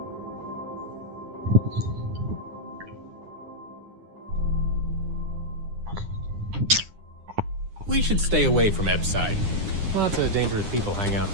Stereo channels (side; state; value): left; late; 9.8 ms